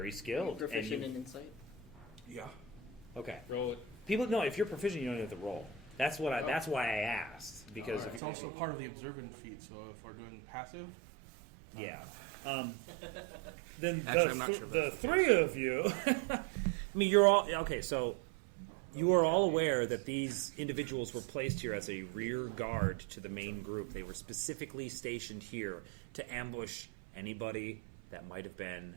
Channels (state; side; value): drops out; left; at 8.2 s